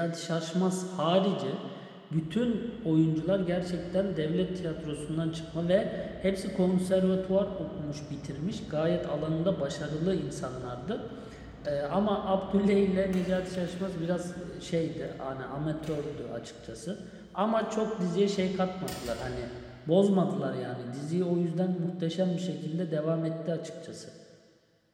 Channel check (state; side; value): identical; both; correlation 1.00